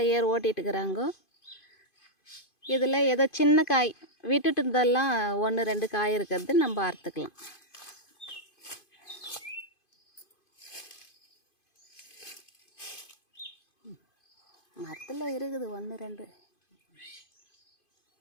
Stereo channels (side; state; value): right; late; 2.5 ms